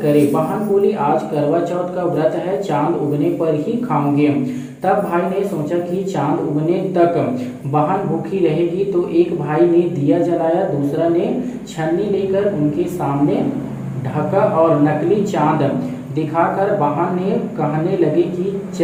करें। बहन बोली आज करवा चौथ का व्रत है, चांद उगने पर ही खाऊंगे। तब भाई ने सोचा कि चांद उगने तक बहन भूखी रहेगी, तो एक भाई ने दिया जलाया, दूसरा ने छन्नी लेकर उनके सामने ढका और नकली चांद दिखाकर बहन ने कहने लगे कि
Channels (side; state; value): both; identical; correlation 1.00